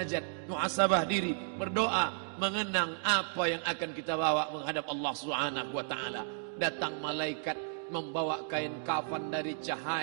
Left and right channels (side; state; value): left; silent; digital silence